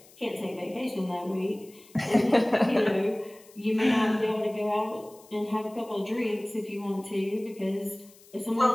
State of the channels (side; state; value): left; noise; hiss, 25 dB below the sound